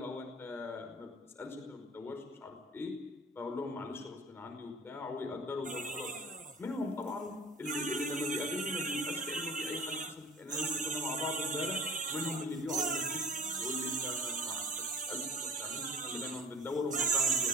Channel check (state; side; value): normal; both; correlation 0.43